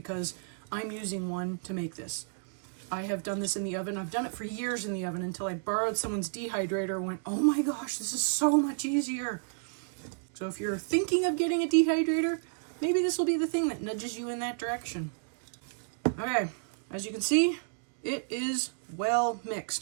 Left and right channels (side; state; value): left; silent; digital silence